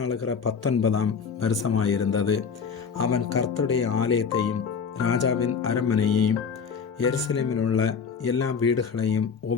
19ஆம் வருஷமாயிருந்தது. அவன் கர்த்தருடைய ஆலயத்தையும் ராஜாவின் அரண்மனையையும் எருசலேமில் உள்ள எல்லா வீடுகளையும்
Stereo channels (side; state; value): right; quieter; 6.0 dB